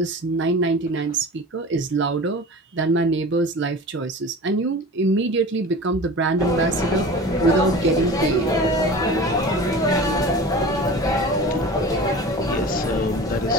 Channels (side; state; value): both; normal; correlation 0.36